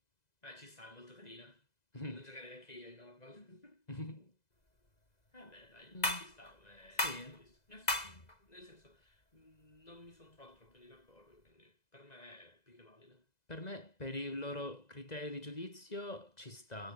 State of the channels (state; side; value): late; right; 2.0 ms